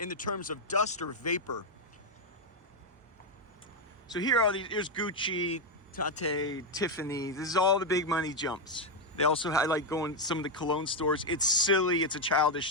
the terms of dust or vapor. So here are these, here's Gucci, Tate, Tiffany. This is all the big money jumps. They also, I like going to some of the cologne stores. It's silly, it's a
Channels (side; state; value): both; normal; correlation 0.04